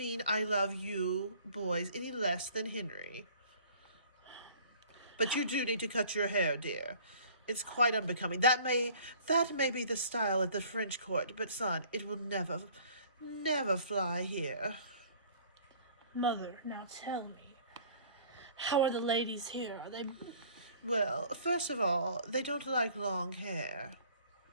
I love you boys any less than Henry. But you do need to cut your hair, dear. It's quite unbecoming. That may be the style at the French court, but son, it will never fly here. Mother, now tell me, how are the ladies here? Are they... Well, first of all, they don't like long hair.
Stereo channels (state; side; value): inverted; both; correlation -0.52